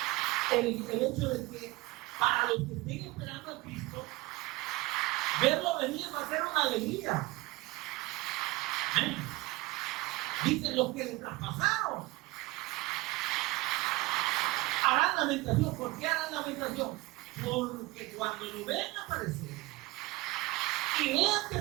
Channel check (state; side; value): quieter; left; 21.5 dB